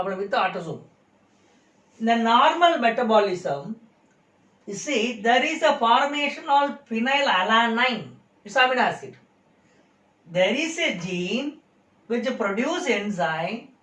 with the autosome. In the normal metabolism, you see, there is a formation of phenylalanine. It's amino acid. There is a gene which produces enzyme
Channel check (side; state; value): both; identical; correlation 1.00